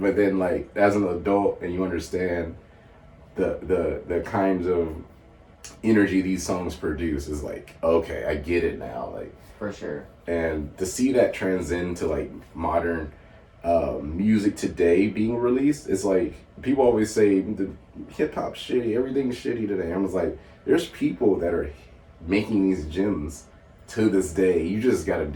but then like as an adult and you understand the kinds of energy these songs produce, is like, okay, I get it now. Like, for sure. And to see that transcend to like modern music today being released, it's like people always say the hip hop's shitty, everything's shitty today. I was like, there's people that are making these gems to this day. You just gotta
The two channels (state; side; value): identical; both; correlation 1.00